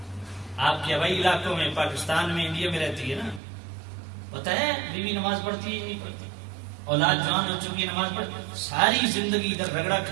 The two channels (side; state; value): left; drops out; at 3.4 s